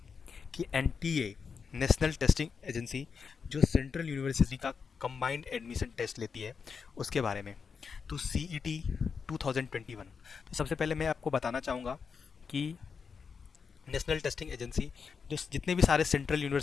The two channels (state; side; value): quieter; right; 5.8 dB